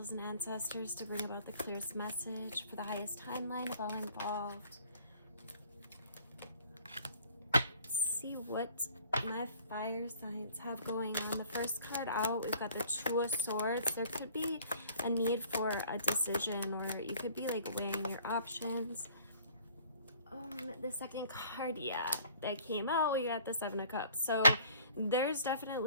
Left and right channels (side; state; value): both; inverted; correlation -0.54